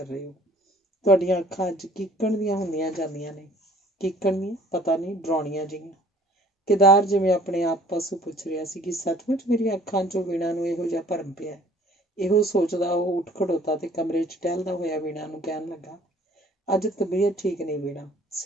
ਰਹੇ ਹੋ? ਤੁਹਾਡੀਆਂ ਅੱਖਾਂ ਅੱਜ ਕੀਕਣ ਦੀਆਂ ਹੁੰਦੀਆਂ ਜਾਂਦੀਆਂ ਨੇ। ਕੀਕਣ ਦੀਆਂ? ਪਤਾ ਨਹੀਂ, ਡਰਾਉਣੀਆਂ ਜਿਹੀਆਂ। ਕੇਦਾਰ ਜਿਵੇਂ ਆਪਣੇ ਆਪ ਪਾਸੋਂ ਪੁੱਛ ਰਿਹਾ ਸੀ ਕਿ ਸੱਚਮੁੱਚ ਮੇਰੀਆਂ ਅੱਖਾਂ 'ਚੋਂ ਵੀਣਾ ਨੂੰ ਇਹੋ ਜਿਹਾ ਭਰਮ ਪਿਆ। ਇਹੋ ਸੋਚਦਾ ਉਹ ਉੱਠ ਖੜੋਤਾ ਤੇ ਕਮਰੇ 'ਚ ਟਹਿਲਦਾ ਹੋਇਆ ਵੀਣਾ ਨੂੰ ਕਹਿਣ ਲੱਗਾ, ਅੱਜ ਤਬੀਅਤ ਠੀਕ ਨਹੀਂ ਵੀਣਾ,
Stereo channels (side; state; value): both; normal; correlation 0.55